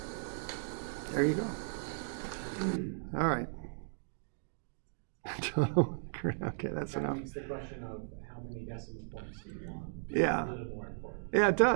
There you go. All right. Okay, that's That enough. makes the question of how many decimal points do you want Yeah. a little more important. Yeah, it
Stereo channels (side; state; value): left; silent; digital silence